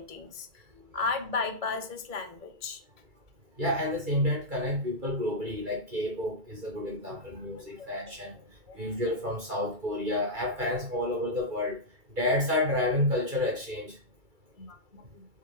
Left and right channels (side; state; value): left; late; 2.3 ms